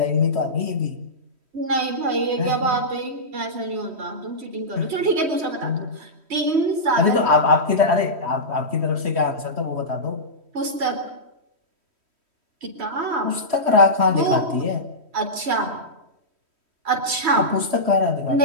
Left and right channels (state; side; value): late; left; 3.1 ms